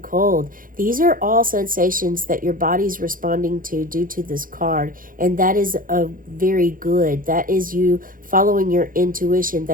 These are all sensations that your body's responding to due to this card, and that is a very good. That is you following your intuition.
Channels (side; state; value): left; late; 0.40 ms